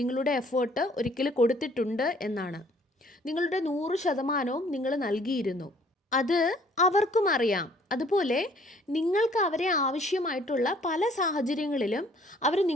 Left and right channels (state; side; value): normal; both; correlation 0.59